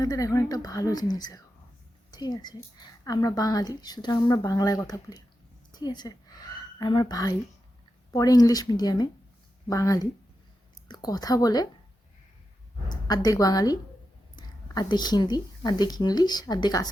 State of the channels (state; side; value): normal; both; correlation 0.89